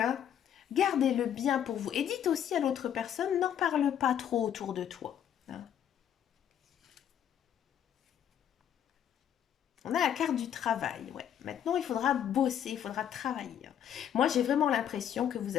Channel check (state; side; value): quieter; right; 9.6 dB